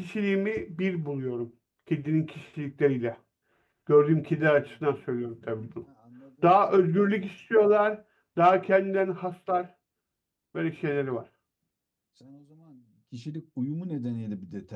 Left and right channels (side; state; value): both; identical; correlation 1.00